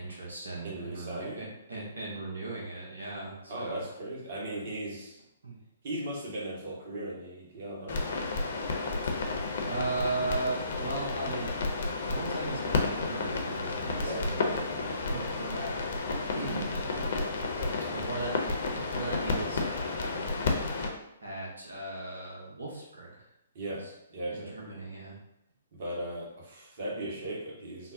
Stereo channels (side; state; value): both; inverted; correlation -0.64